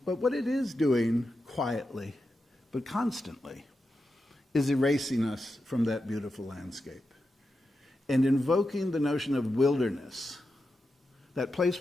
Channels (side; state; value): both; normal; correlation 0.89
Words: what it is doing quietly, but constantly, is erasing us from that beautiful landscape and invoking the notion of wilderness, that place